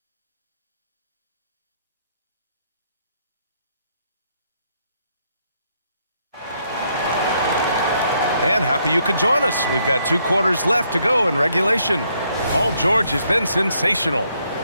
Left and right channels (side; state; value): both; inverted; correlation -0.73